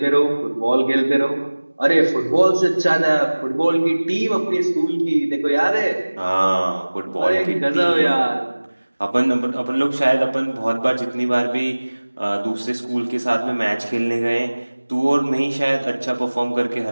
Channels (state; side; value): inverted; both; correlation -1.00